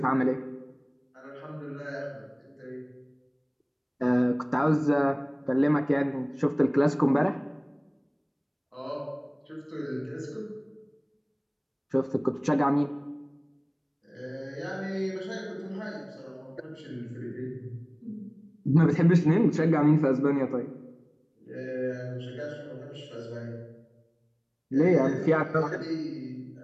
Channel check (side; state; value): both; identical; correlation 1.00